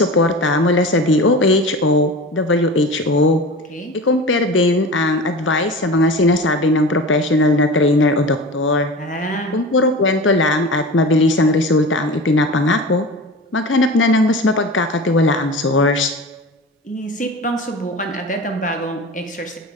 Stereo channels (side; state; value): both; normal; correlation 0.32